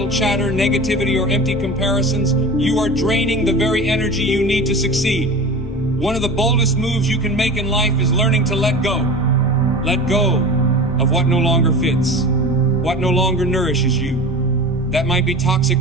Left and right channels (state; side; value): normal; both; correlation 0.33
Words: chatter, negativity, or empty comparisons, you are draining the very energy you need to succeed. One of the boldest moves you can make in life is learning to let go. Let go of what no longer fits, what no longer nourishes you. That might be toxic